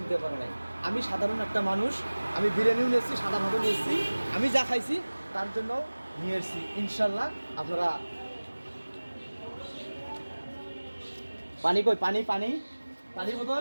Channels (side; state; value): both; inverted; correlation -1.00